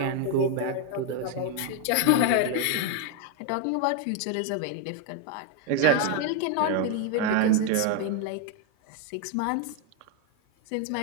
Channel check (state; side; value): different; both; correlation 0.01